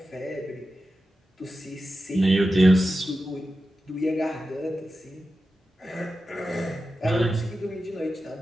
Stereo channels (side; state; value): both; normal; correlation 0.92